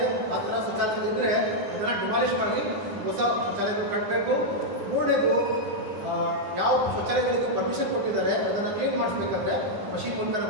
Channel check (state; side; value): late; left; 10 ms